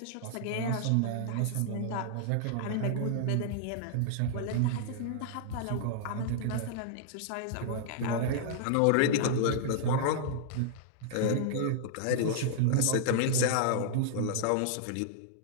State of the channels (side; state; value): both; different; correlation -0.01